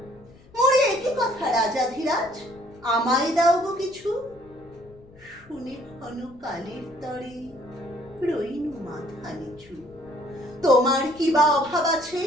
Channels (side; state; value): left; noise; rumble, 25 dB below the sound